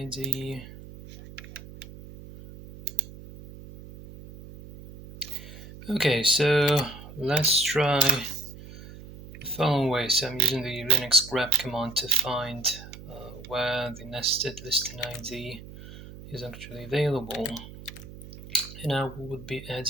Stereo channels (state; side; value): noise; right; hum, 15 dB below the sound